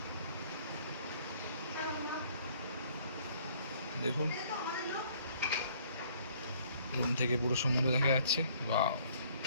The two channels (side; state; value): both; inverted; correlation -0.60